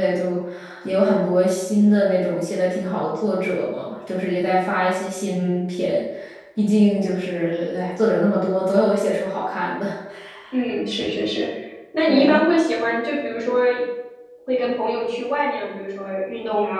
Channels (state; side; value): identical; both; correlation 1.00